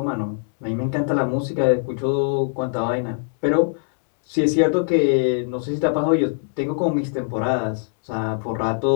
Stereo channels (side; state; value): right; silent; digital silence